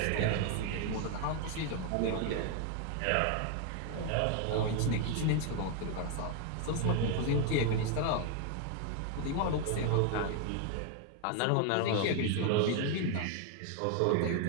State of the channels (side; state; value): both; different; correlation 0.01